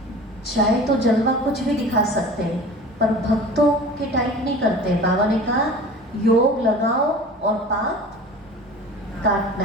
चाहे तो जलवा कुछ भी दिखा सकते हैं, पर भक्तों के टाइप नहीं करते। बाबा ने कहा योग लगाओ और पाप काटना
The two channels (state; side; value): normal; both; correlation 0.40